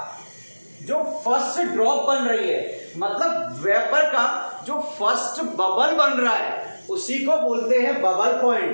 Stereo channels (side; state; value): both; inverted; correlation -1.00